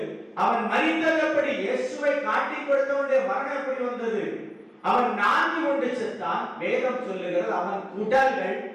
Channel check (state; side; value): identical; both; correlation 1.00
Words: அவன் மரித்தபடி இயேசுவை காட்டி கொடுத்தவனுடைய மரணம் எப்படி வந்தது? அவன் நான்கு கொண்டு செத்தான். வேதம் சொல்லுகிறது அவன் உடல்கள்